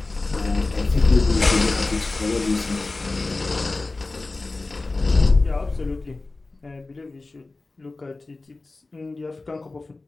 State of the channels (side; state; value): right; quieter; 3.3 dB